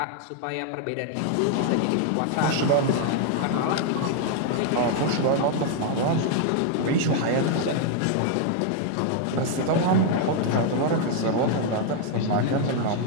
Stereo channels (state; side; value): different; both; correlation 0.00